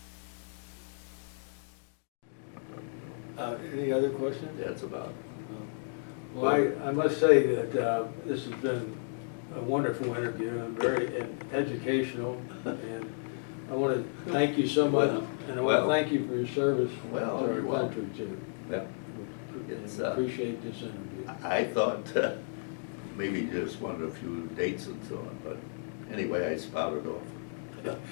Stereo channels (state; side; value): silent; right; digital silence